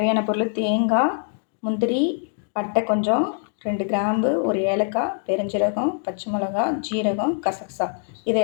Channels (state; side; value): silent; right; 58 dB below the other